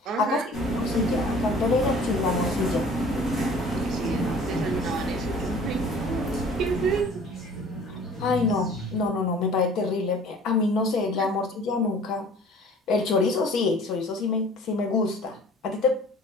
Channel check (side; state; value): both; normal; correlation 0.48